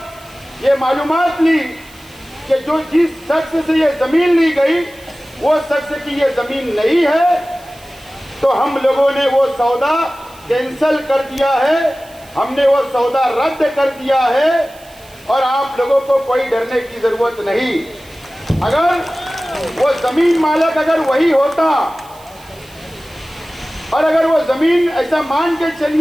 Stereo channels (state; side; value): noise; right; hiss, 25 dB below the sound